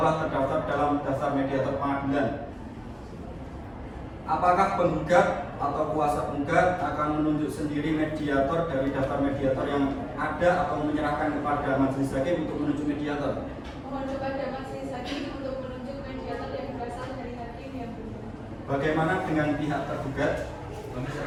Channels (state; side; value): identical; both; correlation 1.00